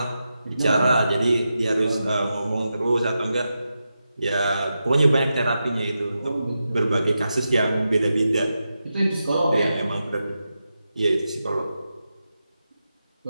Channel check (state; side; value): inverted; both; correlation -0.89